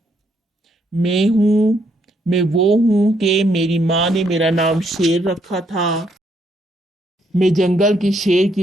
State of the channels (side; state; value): both; normal; correlation 0.73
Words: میں وہ ہوں کہ میری ماں نے میرا نام شیر رکھا تھا، میں جنگل کے شیر